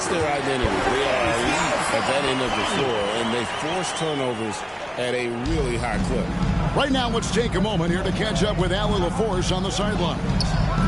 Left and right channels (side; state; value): both; identical; correlation 1.00